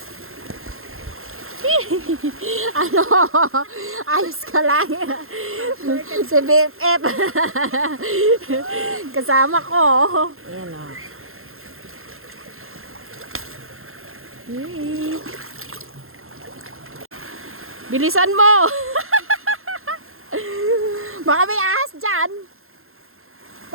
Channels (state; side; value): late; left; 0.61 ms